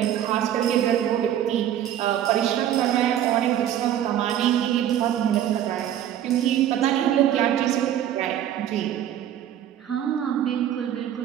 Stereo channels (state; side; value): quieter; left; 10.9 dB